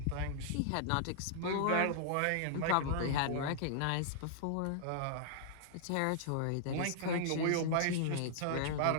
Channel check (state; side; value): different; both; correlation -0.01